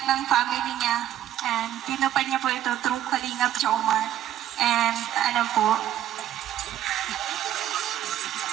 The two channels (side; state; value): left; quieter; 11.7 dB